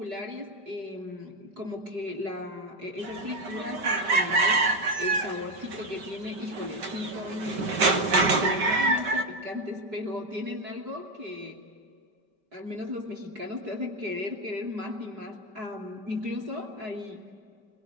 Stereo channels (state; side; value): late; left; 5.1 ms